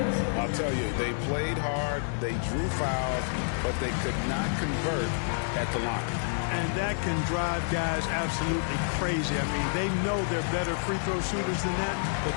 I'll tell you, they played hard, they drew fouls, but they could not convert at the line. And that can drive guys absolutely crazy. I mean, they know they're better free throw shooters than that, but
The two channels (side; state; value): right; silent; digital silence